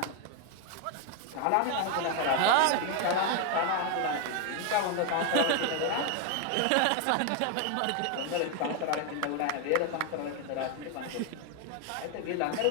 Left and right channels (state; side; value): different; both; correlation 0.01